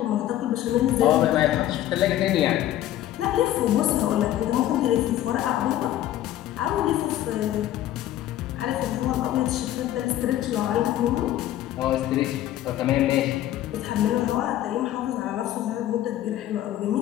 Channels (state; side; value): quieter; right; 13.1 dB